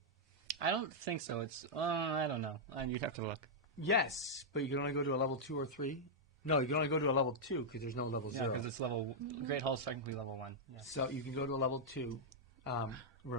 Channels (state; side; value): normal; both; correlation -0.06